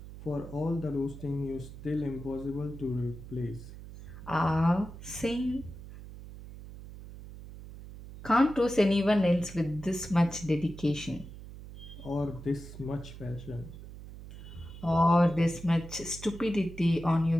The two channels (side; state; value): right; noise; hum, 14 dB below the sound